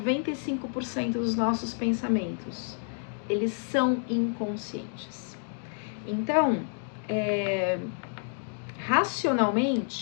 dos nossos pensamentos, eles são inconscientes. Então,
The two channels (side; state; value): right; silent; 58 dB below the other